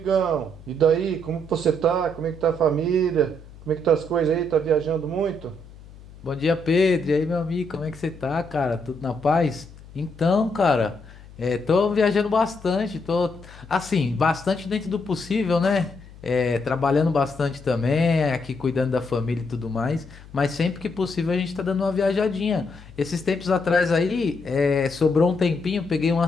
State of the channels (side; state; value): left; noise; hum, 20 dB below the sound